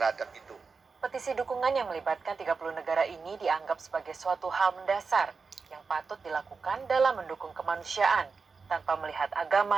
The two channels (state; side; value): quieter; left; 4.9 dB